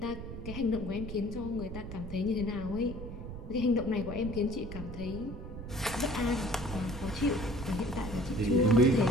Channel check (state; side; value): noise; right; rumble, 9 dB below the sound